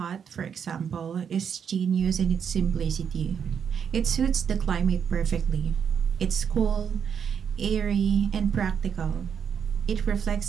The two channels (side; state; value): left; quieter; 7.5 dB